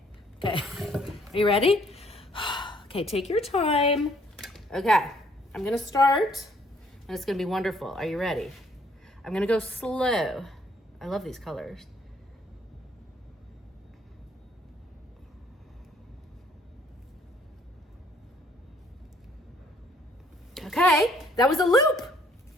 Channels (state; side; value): normal; both; correlation 0.64